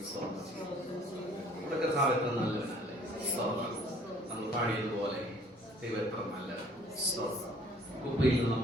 സ്തോത്രം ചെയ്യും. നമ്മുടെ കർത്താവ് എത്ര നല്ലവനല്ലേ. സ്തോത്രം. നമ്മൾ പാടിയതുപോലെ ദൈവം എത്ര നല്ല സ്തോത്രം. കുപ്പയിൽ നിന്ന്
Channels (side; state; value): both; normal; correlation 0.56